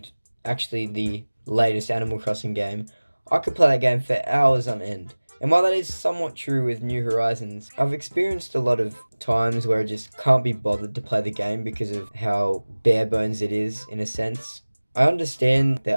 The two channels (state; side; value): inverted; both; correlation -1.00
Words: actually the latest Animal Crossing game, I could play that game for hours on end. And while that is somewhat true with New Horizons, I've experienced a lot of times where I just can't be bothered to play the game because of how bare bones it is, in a sense. I understand they're